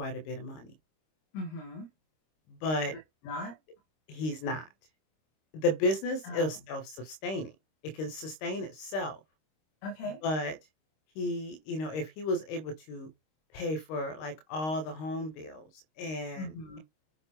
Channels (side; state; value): right; late; 26 ms